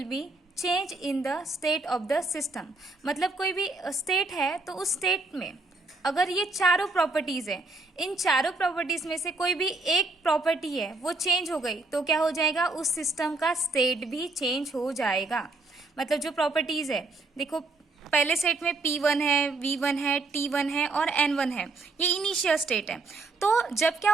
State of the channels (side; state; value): left; quieter; 3.4 dB